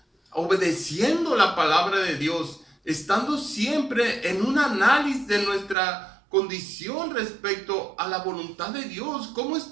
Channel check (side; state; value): left; drops out; at 5.8 s